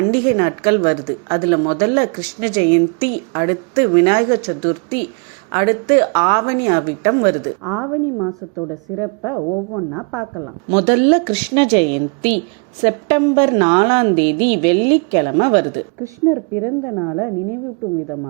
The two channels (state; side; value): quieter; left; 35.7 dB